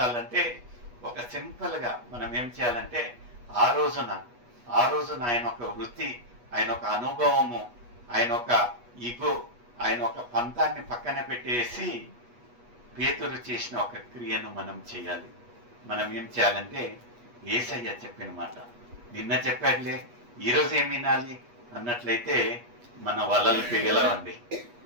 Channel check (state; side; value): late; left; 8.3 ms